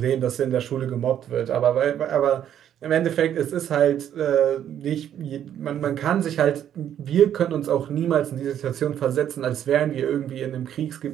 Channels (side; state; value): left; quieter; 10.2 dB